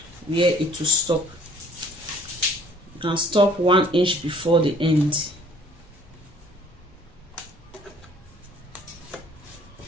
where it will stop. You can stop 1 inch before the end.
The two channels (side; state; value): both; normal; correlation 0.57